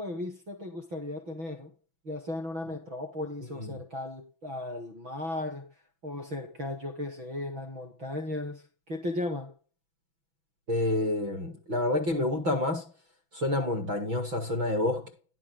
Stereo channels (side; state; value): left; late; 6.1 ms